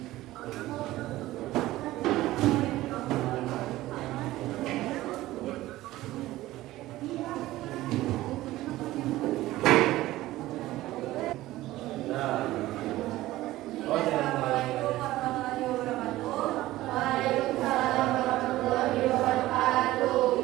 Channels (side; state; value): left; quieter; 16.5 dB